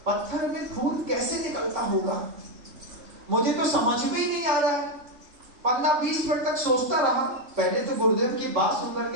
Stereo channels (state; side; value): late; left; 3.6 ms